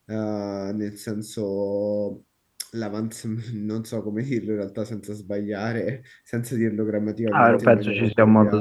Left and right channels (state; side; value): identical; both; correlation 1.00